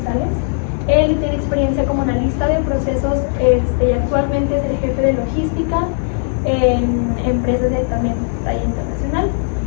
Él tiene experiencia como analista de procesos y actualmente es el jefe de logística en empresas de también talla internacional.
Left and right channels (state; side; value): silent; right; 65 dB below the other